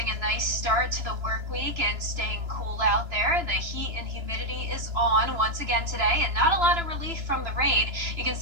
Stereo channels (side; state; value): left; late; 2.9 ms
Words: a nice start to the work week and staying cool out there. The heat and humidity is on once again today, and not a lot of relief from the rain. You can